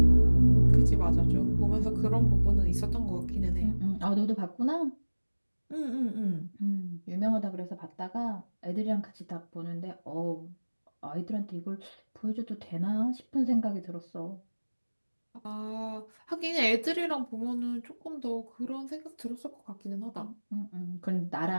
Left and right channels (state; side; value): inverted; both; correlation -1.00